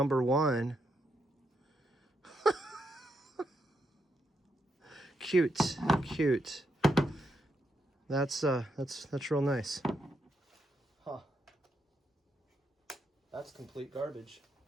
1. Cute. That's real nice. Huh. That's complete garbage.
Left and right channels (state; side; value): normal; both; correlation 0.80